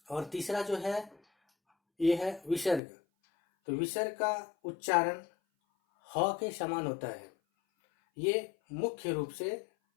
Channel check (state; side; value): drops out; right; at 2.8 s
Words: और तीसरा जो है ये है विसर्ग। तो विसर्ग का उच्चारण ह के समान होता है। ये मुख्य रूप से